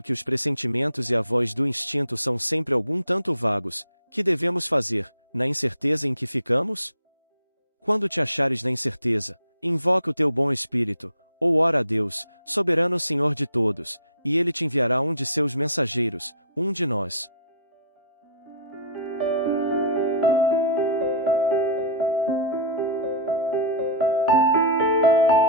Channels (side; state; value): both; inverted; correlation -0.39